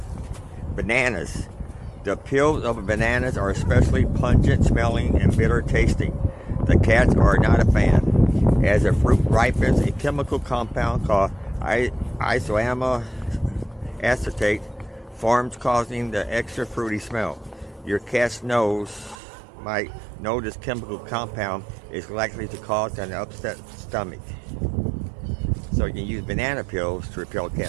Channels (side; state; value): left; drops out; at 19.2 s